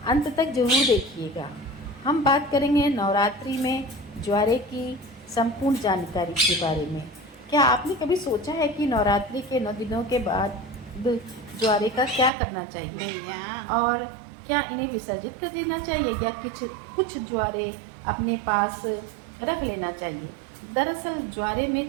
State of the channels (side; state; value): left; drops out; at 12.3 s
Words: अंत तक जरूर देखिएगा। हम बात करेंगे नवरात्रि में ज्वारे की संपूर्ण जानकारी के बारे में। क्या आपने कभी सोचा है कि नवरात्रि के 9 दिनों के बाद ज्वारे का क्या करना चाहिए और क्या इन्हें विसर्जित कर देना चाहिए या कुछ ज्वारे अपने पास रख लेना चाहिए। दरअसल ज्वारे